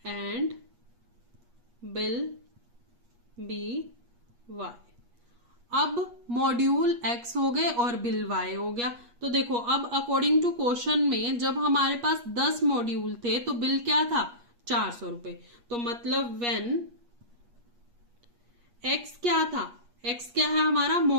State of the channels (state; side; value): late; left; 8.4 ms